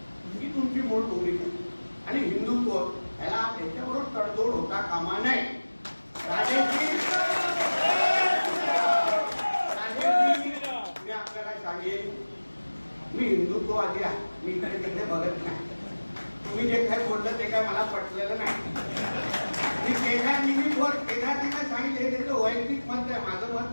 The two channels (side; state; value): both; inverted; correlation -1.00